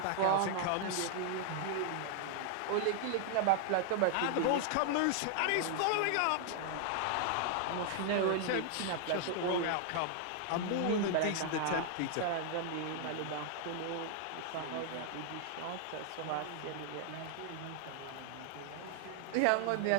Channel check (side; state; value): both; different; correlation 0.00